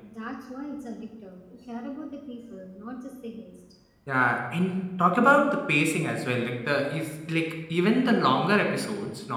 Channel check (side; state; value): both; identical; correlation 1.00